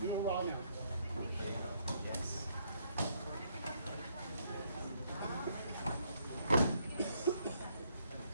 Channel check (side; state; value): both; inverted; correlation -0.71